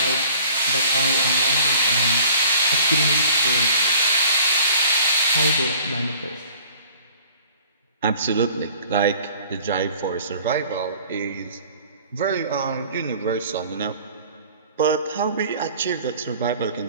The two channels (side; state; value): both; inverted; correlation -0.50